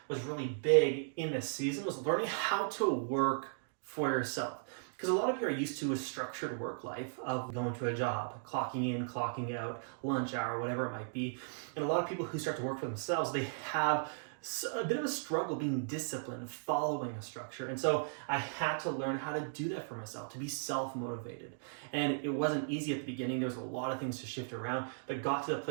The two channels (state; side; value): silent; left; digital silence